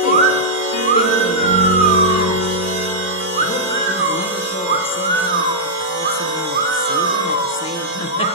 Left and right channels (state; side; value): normal; both; correlation -0.09